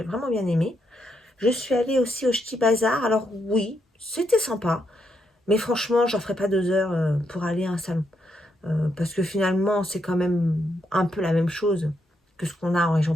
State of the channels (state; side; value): normal; both; correlation 0.79